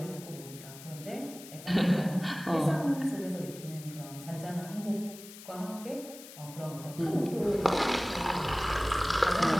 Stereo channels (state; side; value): noise; left; hiss, 16 dB below the sound